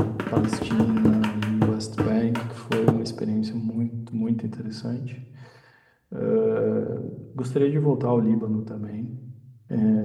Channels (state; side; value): identical; both; correlation 1.00